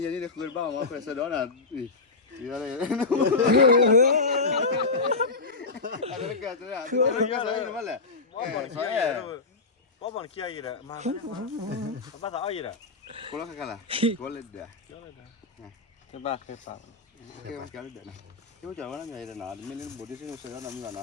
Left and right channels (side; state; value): right; quieter; 3.9 dB